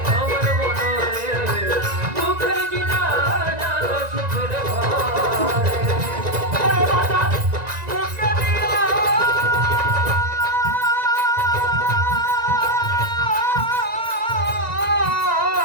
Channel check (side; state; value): left; late; 1.9 ms